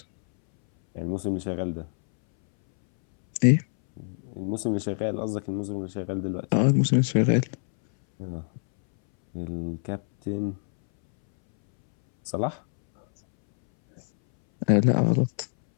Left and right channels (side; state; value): right; silent; 62 dB below the other